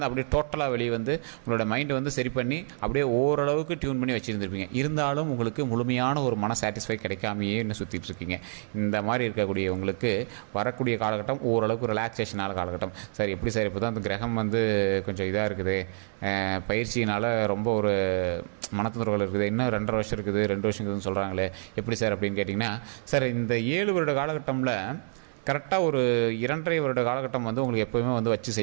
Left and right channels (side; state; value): left; silent; digital silence